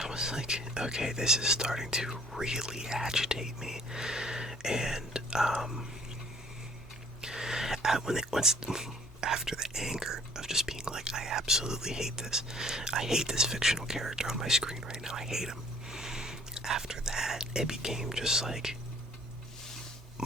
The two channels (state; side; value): normal; both; correlation 0.55